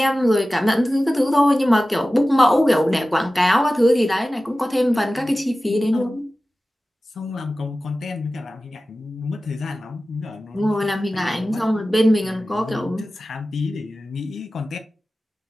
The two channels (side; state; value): both; normal; correlation 0.96